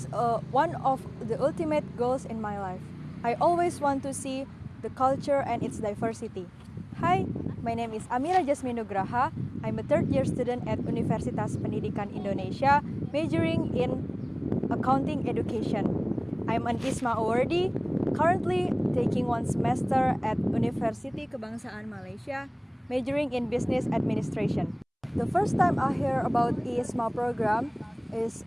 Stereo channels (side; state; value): both; identical; correlation 1.00